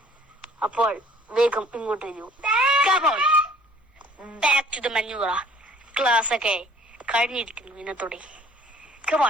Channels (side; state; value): both; normal; correlation 0.55